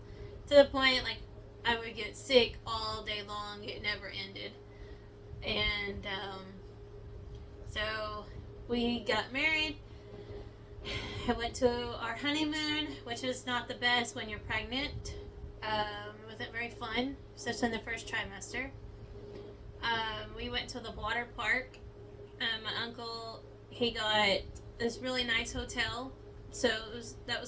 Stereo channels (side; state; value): both; identical; correlation 1.00